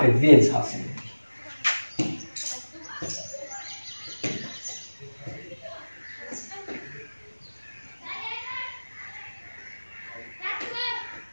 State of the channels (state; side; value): inverted; both; correlation -1.00